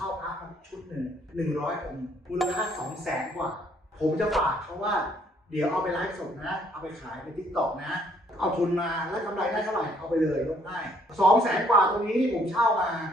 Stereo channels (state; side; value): normal; both; correlation 0.65